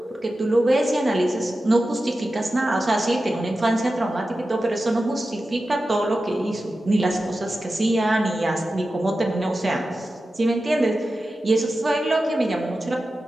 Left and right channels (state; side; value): normal; both; correlation 0.93